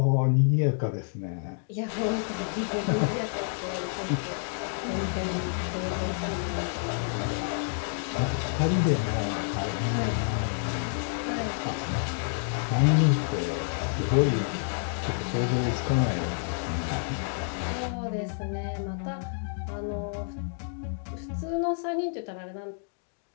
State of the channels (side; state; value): right; silent; digital silence